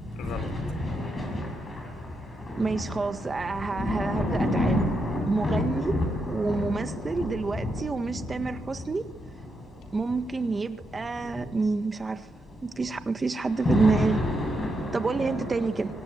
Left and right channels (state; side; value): normal; both; correlation 0.83